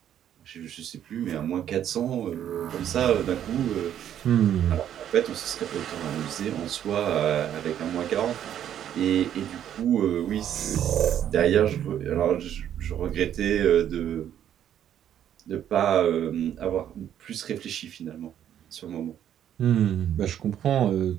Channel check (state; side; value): quieter; left; 10.3 dB